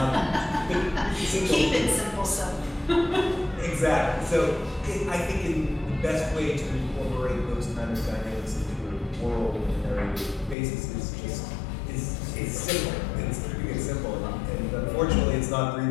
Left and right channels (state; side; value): drops out; right; at 10.6 s